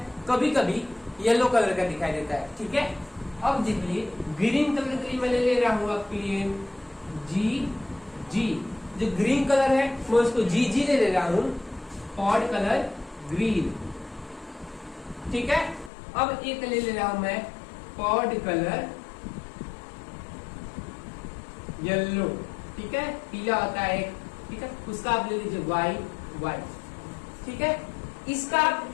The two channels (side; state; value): right; drops out; at 15.9 s